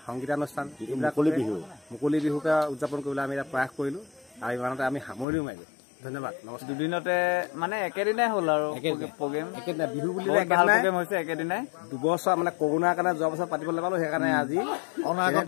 সংগীতানুষ্ঠান এইবিলাক মুকলি বিহুকে উদযাপন কৰিবলৈ আমি এটা প্ৰয়াস কৰিলোঁ আৰু ইমানতে আমি সামৰিও মাৰিলোঁ ধন্যবাদ নমস্কাৰ দুদিনতে মানে একেদিনাই হ'ল আৰু প্ৰগ্ৰেম একেদিনাই বিহু বুলি হৈছে একেদিনাই দুবছৰ মানে কৰোণাৰ কাৰণে যোৱা বছৰ পাতিবলৈ পালোঁ সেইকাৰণে আজি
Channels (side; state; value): right; drops out; at 5.2 s